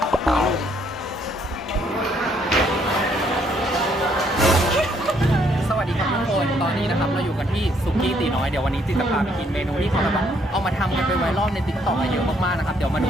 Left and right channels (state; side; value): normal; both; correlation 0.69